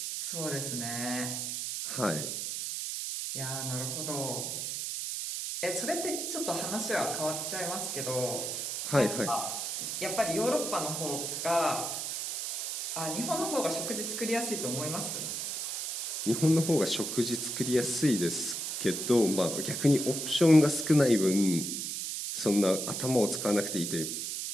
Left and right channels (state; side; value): noise; right; hiss, 3 dB below the sound